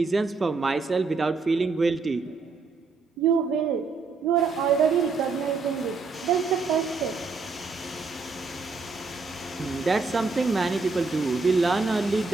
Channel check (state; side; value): quieter; left; 4.3 dB